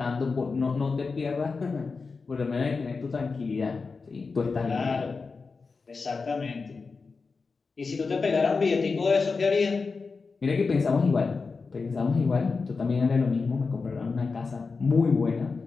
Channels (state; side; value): quieter; right; 4.5 dB